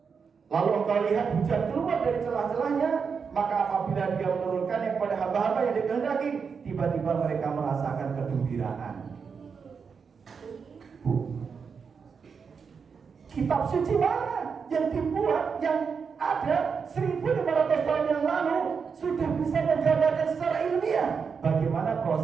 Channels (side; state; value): left; quieter; 5.9 dB